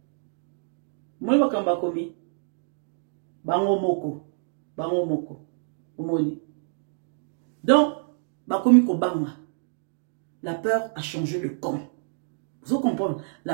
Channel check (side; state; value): left; silent; digital silence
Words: Moi makamba komi. Bango moko. Omoni. Donc, bakomi kobanga. La peur a changé de camp. Vous comprenez?